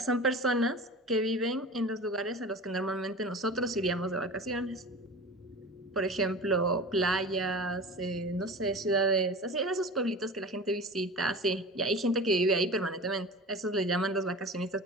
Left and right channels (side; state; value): both; normal; correlation 0.34